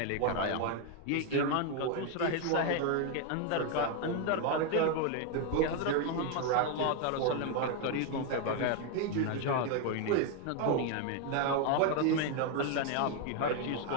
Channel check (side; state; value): both; different; correlation 0.01